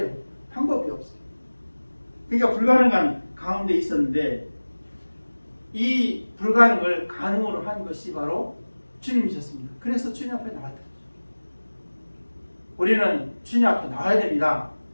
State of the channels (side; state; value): both; inverted; correlation -1.00